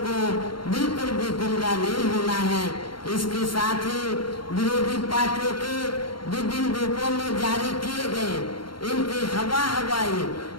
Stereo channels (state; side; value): late; right; 0.73 ms